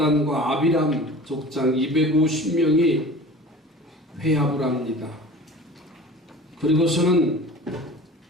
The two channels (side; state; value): both; normal; correlation 0.40